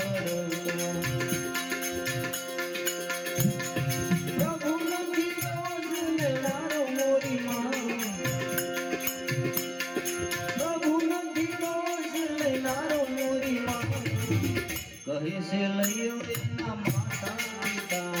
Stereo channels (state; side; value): identical; both; correlation 1.00